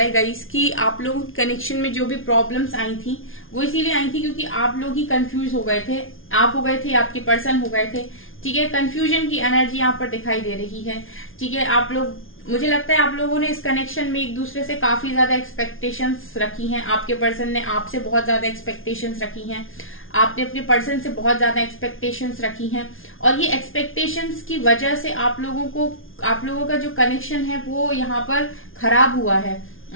है गाइस कि आप लोगों के कनेक्शन में जो भी प्रॉब्लम्स आई थी वो इसीलिए आई थी क्योंकि आप लोग ही कंफ्यूज हो गए थे, आप हो गए थे, आपके पर्सन हो गए थे। ठीक है, कंफ्यूजन की एनर्जी यहाँ पर दिखाई दे रही है। ठीक है, आप लोग, मुझे लगता है आप लोगों ने इस कनेक्शन में एक दूसरे से काफी ज्यादा एक्सपेक्टेशंस रखी हैं। आपके पर्सन ने आपसे बहुत ज्यादा एक्सपेक्टेशंस रखी हैं, आपने अपने पर्सन से बहुत ज्यादा एक्सपेक्टेशंस रखी हैं, और ये एक्सपेक्टेशंस की वजह से आप लोगों का जो कनेक्शन है वो यहाँ पर खराब हुआ है।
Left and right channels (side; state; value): right; late; 0.59 ms